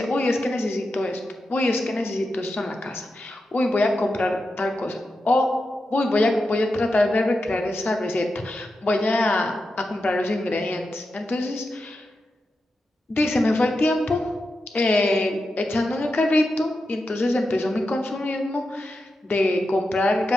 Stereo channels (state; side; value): normal; both; correlation 0.89